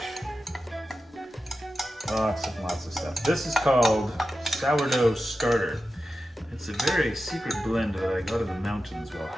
Lots of stuff. This is called sourdough starter. It's a very secret blend that I got in the mountains while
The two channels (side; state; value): both; normal; correlation 0.92